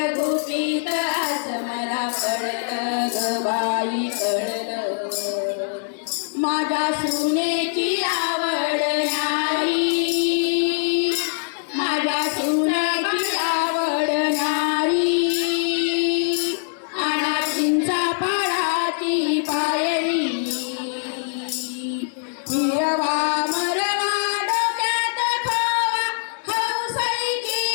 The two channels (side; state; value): right; silent; 64 dB below the other